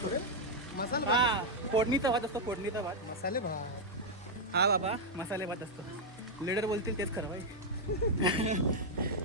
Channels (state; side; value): normal; both; correlation -0.01